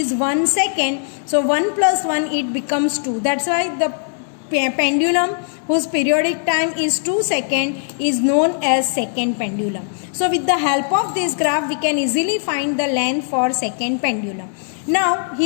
1 second. So 1 plus 1, it becomes 2. That's why the pendulum whose periodic time is 2 seconds is known as second pendulum. So with the help of this graph, we can easily find the length for second pendulum. Now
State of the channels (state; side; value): silent; right; digital silence